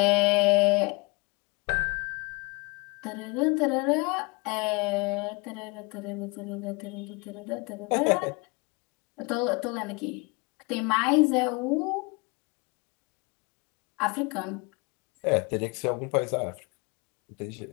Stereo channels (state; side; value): quieter; right; 28.1 dB